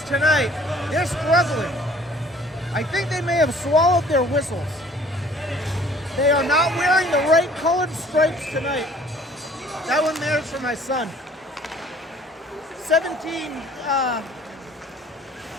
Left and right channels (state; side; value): normal; both; correlation 0.54